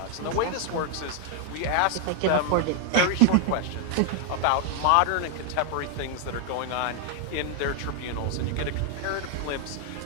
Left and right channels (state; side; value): different; both; correlation 0.00